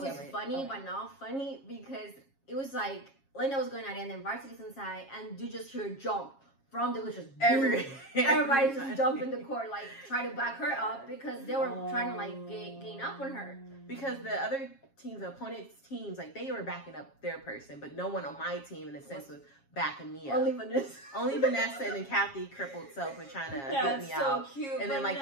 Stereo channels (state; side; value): late; right; 7.3 ms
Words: was funny, but not funny because it was like Linda was going at it, and then varsity's inside, and you just hear jump from the just everybody just jump in the court, like try to back her up because they were trying to like gain up on her. Because the other teams, the opponent's teams, like they were backing up their person, but no one on my team in a sense was backing me up. Only Vanessa and then Kathy crippled self were trying to help me out. So cute. And Vanessa. then like